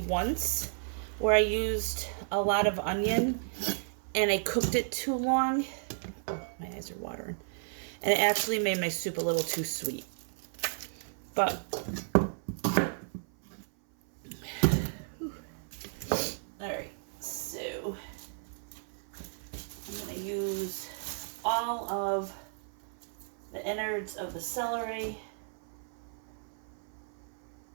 where I used a lot of onion and I cooked it too long. Oh, my eyes are watering. And it actually made my soup a little too sweet. But, alright, so I'm going to use all of the innards of the celery.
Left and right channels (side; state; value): left; silent; 56 dB below the other